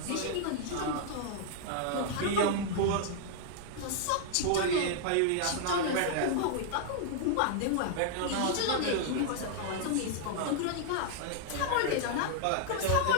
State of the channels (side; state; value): both; different; correlation -0.01